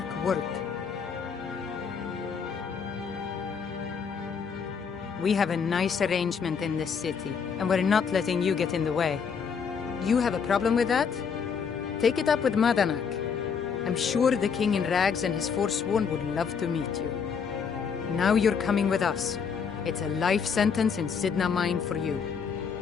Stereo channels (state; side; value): quieter; right; 6.3 dB